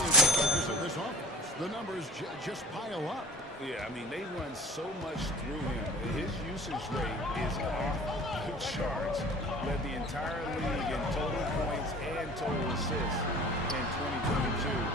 the focus of this offense. The numbers just pile up. Yeah, I mean, they run so much through him. His usage rate is off the charts. Led the entire league in total points and total assists in 2022.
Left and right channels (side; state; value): both; normal; correlation 0.44